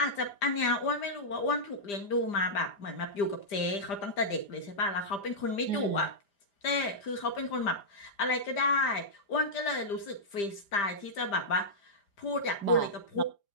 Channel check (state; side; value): late; right; 5.0 ms